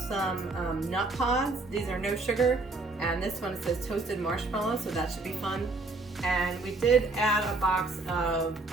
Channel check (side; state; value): left; quieter; 3.4 dB